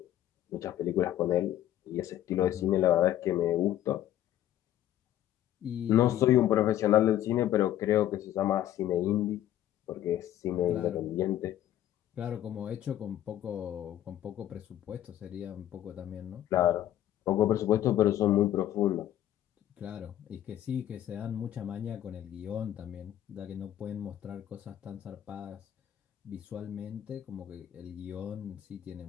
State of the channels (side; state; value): right; quieter; 12.3 dB